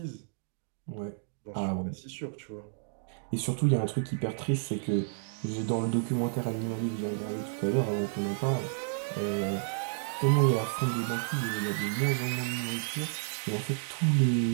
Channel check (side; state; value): left; silent; digital silence